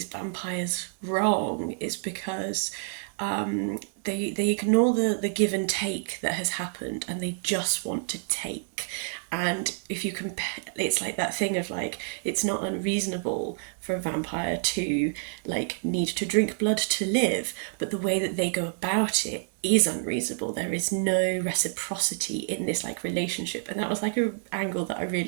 vampires wrong is because they ignore the give and take that has happened, and they just want to take. And if you compare, it's like that thing of like, it's not unreasonable for a vampire to like need to drink blood to live, but the way that they go about it is unreasonable. There is no reciprocity in this like relationship, and that was like an angle that I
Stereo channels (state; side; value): silent; left; digital silence